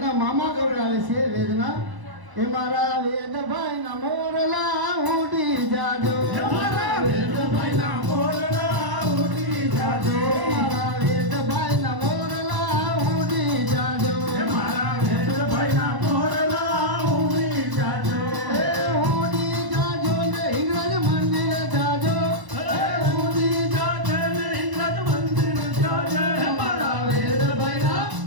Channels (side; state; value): left; late; 1.0 ms